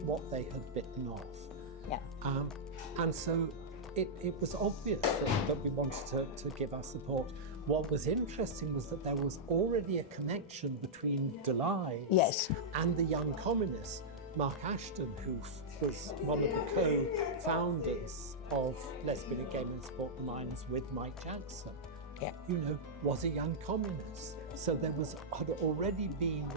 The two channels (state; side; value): normal; both; correlation -0.10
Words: what they had bitten off. Yeah. And so it was obvious that we wanted to give our support. What was interesting was that there was already a connection between Delise and the Young Communists. Mark Ashton, who was one of the co-founders of Lesbian and Gay Men Support the Miners with Mike Jackson, was a young communist. So there had already been